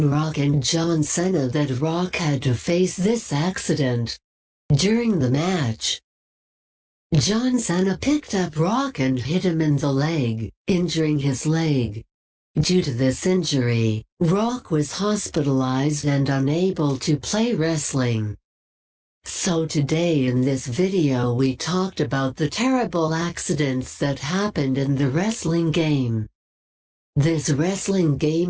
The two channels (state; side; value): identical; both; correlation 1.00